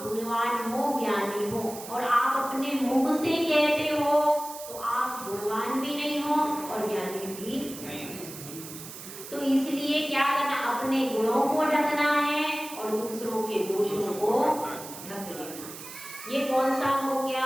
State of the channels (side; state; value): right; noise; hiss, 13 dB below the sound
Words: गुणवान हो, ज्ञानी हो। और आप अपने मुख से कहते हो तो आप गुणवान भी नहीं हो और ज्ञानी भी नहीं। तो इसलिए क्या करना? अपने गुणों को ढकना है और दूसरों के दोषों को ढक लेना। ये कौन सा हो